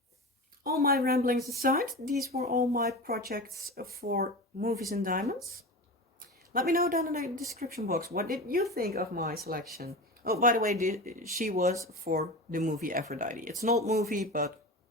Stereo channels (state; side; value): normal; both; correlation 0.27